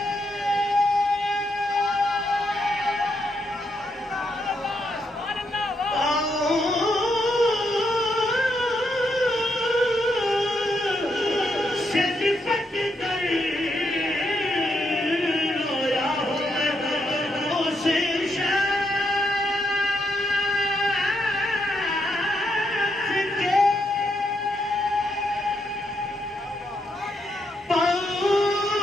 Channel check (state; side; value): normal; both; correlation 0.79